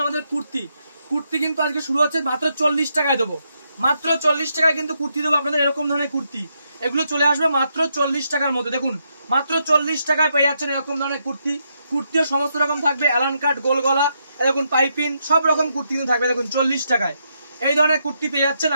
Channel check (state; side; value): inverted; both; correlation -0.80